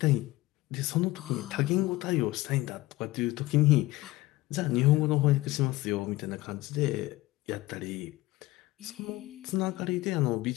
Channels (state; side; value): quieter; right; 18.5 dB